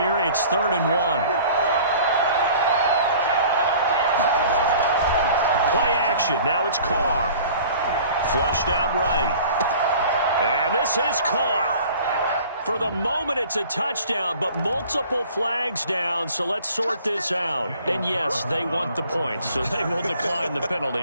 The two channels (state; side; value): inverted; both; correlation -0.48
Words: It's 3rd and 1. Play action. Now it's Carr. Flushed out right. And this is caught. For the moment, it's a touchdown, but multiple flags down, so let's sort this out. And yes, they want the points, so they will decline the penalty,